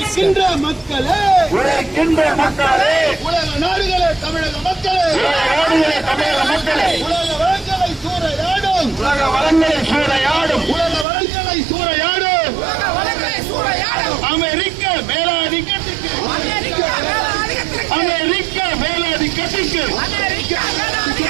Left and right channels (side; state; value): left; drops out; at 11.1 s